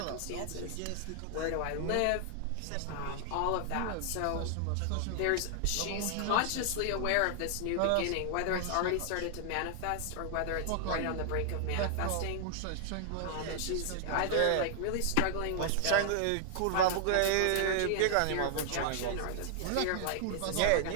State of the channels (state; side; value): different; both; correlation -0.01